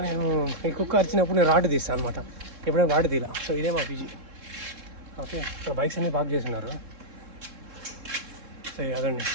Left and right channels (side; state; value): left; late; 3.7 ms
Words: నేను ఈ కుక్క అరిచినప్పుడు నేను రాడ్ తీస్తాను అనమాట, ఎప్పుడైనా రాడ్ తీలా. సో ఇదే మా పీజీ. ఓకే, ఇక్కడ బైక్స్ అన్నీ పార్క్ చేస్తున్నారు. సో అదండి,